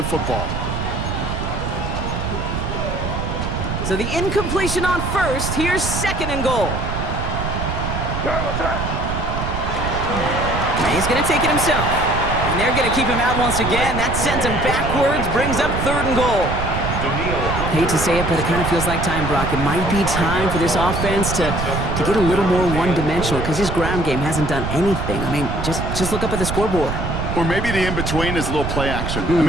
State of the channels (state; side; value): noise; right; rumble, 3 dB below the sound